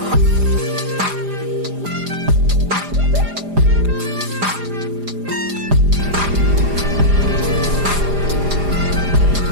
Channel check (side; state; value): left; late; 4.9 ms